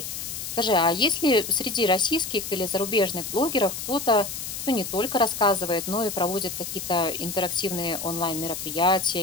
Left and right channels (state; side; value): noise; left; hiss, 6 dB below the sound